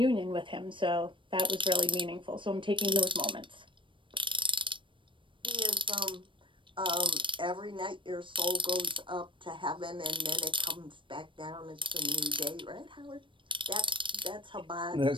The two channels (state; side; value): late; left; 0.25 ms